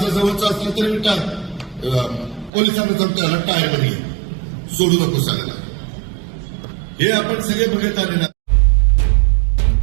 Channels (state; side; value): drops out; left; at 2.5 s